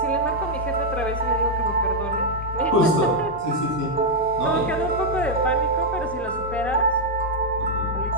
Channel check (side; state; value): right; noise; rumble, 27 dB below the sound